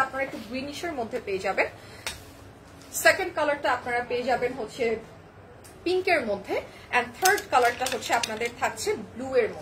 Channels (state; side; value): identical; both; correlation 1.00